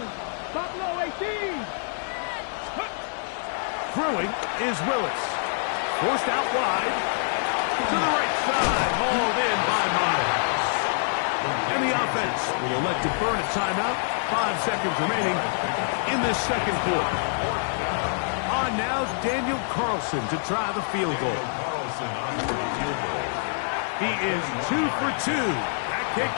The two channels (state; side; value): silent; right; 61 dB below the other